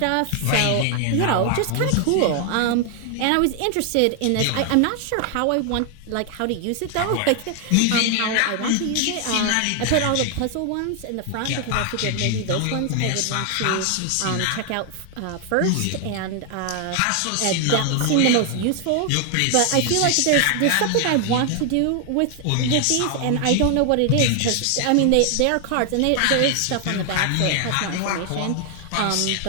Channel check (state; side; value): different; both; correlation 0.00